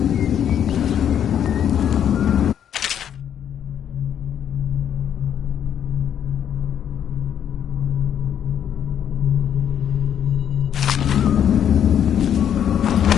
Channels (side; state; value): right; quieter; 9.3 dB